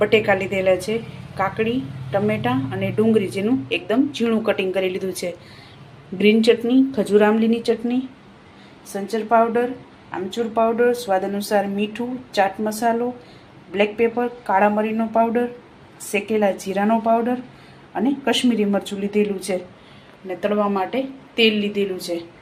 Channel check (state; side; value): identical; both; correlation 1.00